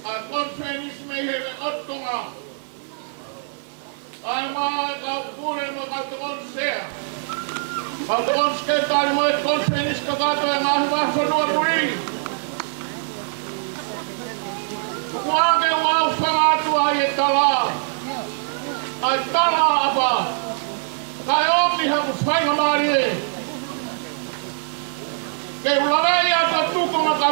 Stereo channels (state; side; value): silent; left; 64 dB below the other